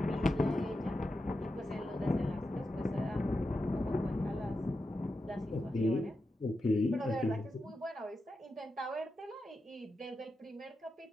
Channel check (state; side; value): normal; both; correlation 0.89